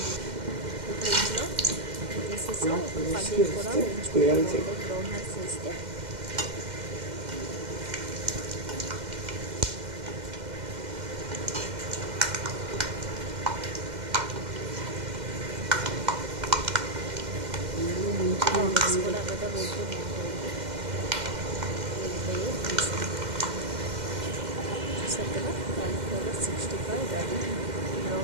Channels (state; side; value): late; left; 2.1 ms